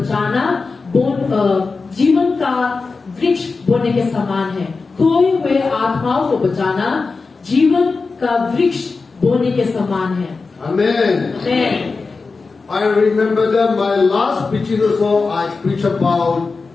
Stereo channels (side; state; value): right; quieter; 4.2 dB